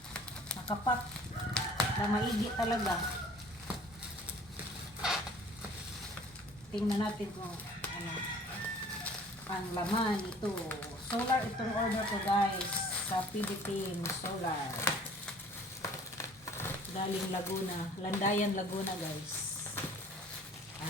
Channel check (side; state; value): both; normal; correlation 0.51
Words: Nakapak. Na maigi talaga. Tingnan natin kung ano ang laman ito. Solar itong order ko guys sa PB Team Solar. Galing Laguna. Landayan, Laguna guys.